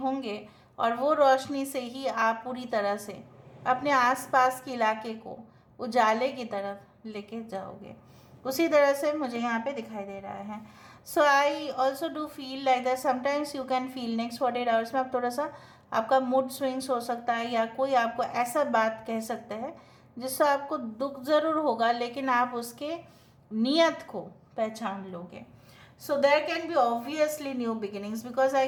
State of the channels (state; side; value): identical; both; correlation 1.00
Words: और वो रोशनी से ही आप पूरी तरह से अपने आसपास के इलाके को उजाले की तरफ लेके जाओगे। उसी तरह से मुझे यहाँ पे दिखाई दे रहा है। So I also do feel like that sometimes you can feel next 48 hours में आप थोड़ा सा आपका मूड स्विंग्स हो सकता है, या कोई आपको ऐसा बात कह सकता है जिससे आपको दुख ज़रूर होगा, लेकिन आप उसके नियत को पहचान लोगे। So there can be obviously new beginnings, because I